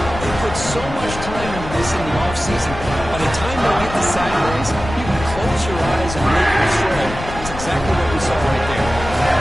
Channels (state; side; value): noise; left; rumble, 10 dB below the sound